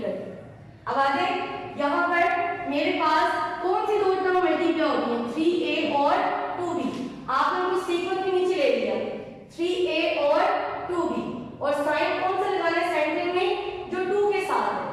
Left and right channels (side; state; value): both; identical; correlation 1.00